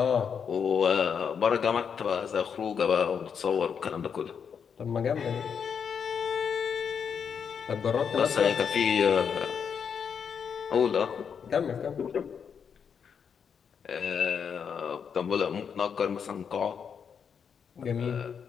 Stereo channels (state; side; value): quieter; right; 6.9 dB